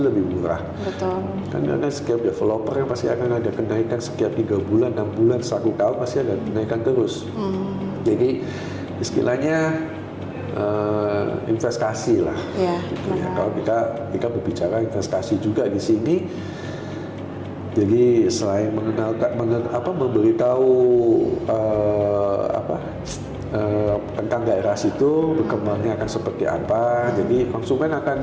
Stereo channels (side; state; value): both; identical; correlation 1.00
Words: murah. Kan setiap developer yang pasti akan ada kenaikan setiap 3 bulan, 6 bulan, 1 tahun pasti ada kenaikan terus. Jadi istilahnya investasi lah. Gitu ya. Kalau kita berbicara investasi juga di sini. Jadi selain memberitahu tentang daerah situ berkembangnya akan seperti apa, jadi konsumen